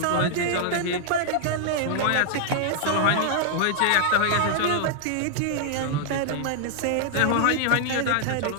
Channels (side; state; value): both; different; correlation -0.01